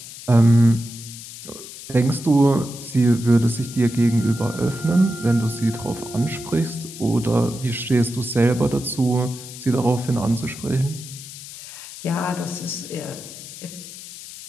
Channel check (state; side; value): noise; left; hiss, 14 dB below the sound